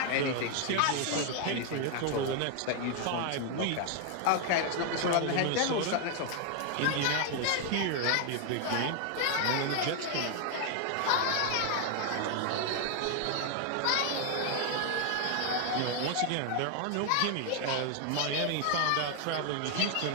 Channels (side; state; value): both; different; correlation 0.00